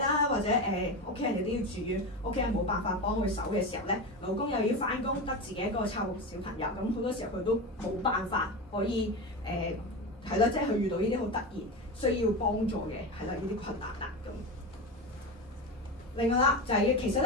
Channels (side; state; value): both; normal; correlation 0.20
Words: 或者屋企人亦都要住院，屋企人冇辦法幫佢手嘅時候咧，老公又要翻工，得自己一個湊小朋友，咁好多時候佢都冇辦法可以係啦，即係佢遇到呢啲好突然需要幫助嘅係啦呢啲困難啦咁。另外啦，就係、其實